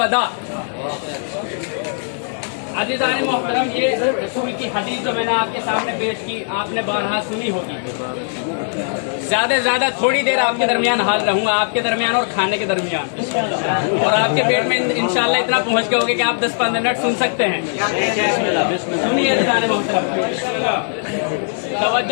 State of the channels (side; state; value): right; silent; digital silence